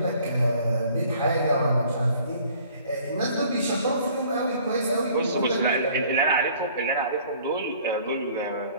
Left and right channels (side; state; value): both; inverted; correlation -0.55